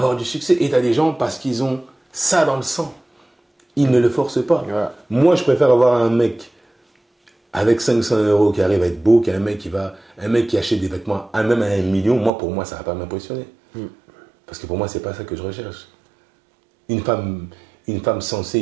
du succès. Et tu as des gens, parce qu'ils ont ça dans le sang, ils ne le forcent pas. Ouais. Moi, je préfère avoir un mec avec 500 € qui arrive à être beau qu'un mec qui achète des vêtements même à 1 million. Moi, pour moi, ça ne va pas m'impressionner. Parce que pour moi, c'est pas ça que je recherche. Une femme sensée,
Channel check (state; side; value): drops out; left; at 12.3 s